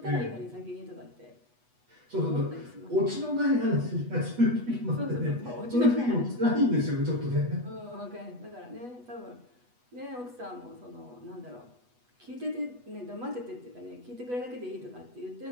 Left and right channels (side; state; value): left; late; 8.2 ms